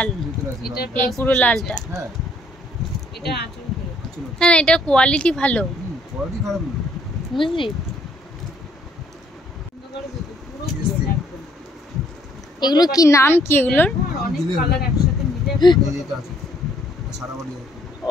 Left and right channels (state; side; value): normal; both; correlation 0.65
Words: এই পুরো লালটা। হ্যাঁ এটা আঁচল, হ্যাঁ এটা কোয়ালিটি ভালো, কোয়ালিটি খারাপ না, বুঝলি। এগুলো কি নাম, কি এগুলোর? অনেক কালার একসাথে মিলে এটা আছে সারা বডি।